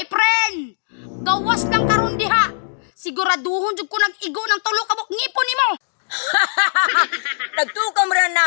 friend, gawas lang karon diha. Siguraduhon jud ko nag-igo ng tulo kabok ngipon nimo. Nagtukam rin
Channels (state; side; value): silent; right; digital silence